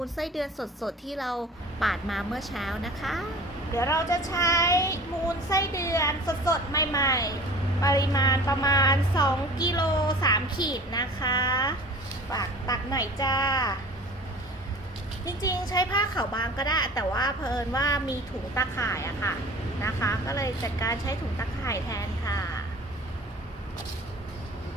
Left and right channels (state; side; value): normal; both; correlation 0.42